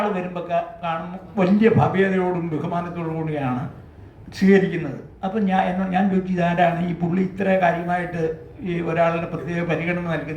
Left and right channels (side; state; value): both; identical; correlation 1.00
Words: വരുമ്പോൾ കാണുമ്പോൾ വലിയ ഭവ്യതയോടും ബഹുമാനത്തോടു കൂടിയാണ് സ്വീകരിക്കുന്നത്. അപ്പം ഞാൻ ചോദിച്ചു, ഇതാരാണ് ഈ പുള്ളി ഇത്ര കാര്യമായിട്ട് ഈ ഒരാളുടെ പ്രത്യേക പരിഗണന